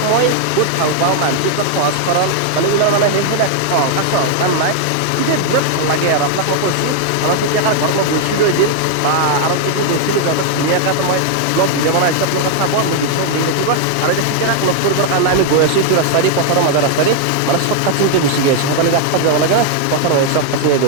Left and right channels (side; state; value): both; different; correlation 0.00